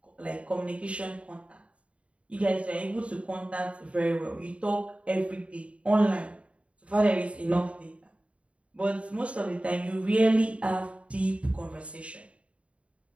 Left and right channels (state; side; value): late; left; 0.063 ms